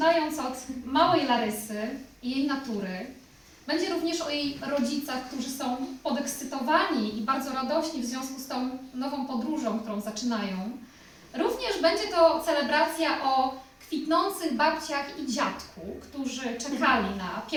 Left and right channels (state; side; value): identical; both; correlation 1.00